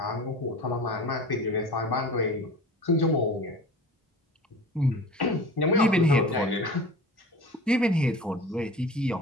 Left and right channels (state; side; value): normal; both; correlation 0.38